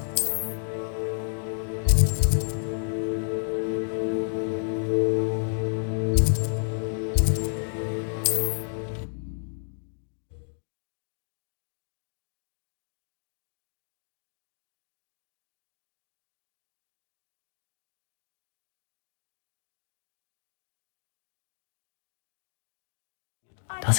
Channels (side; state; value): right; silent; digital silence